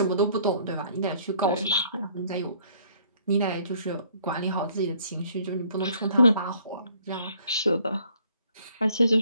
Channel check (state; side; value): inverted; both; correlation -0.60